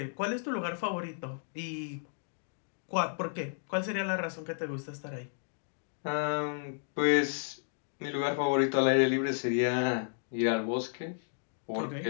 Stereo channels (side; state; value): right; silent; digital silence